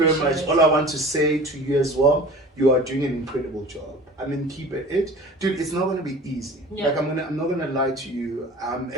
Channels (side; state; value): both; normal; correlation 0.40